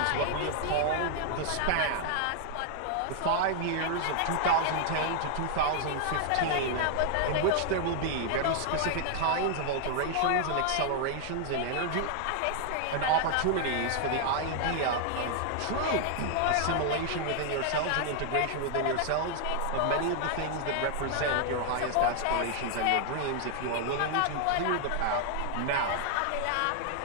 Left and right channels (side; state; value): both; different; correlation 0.00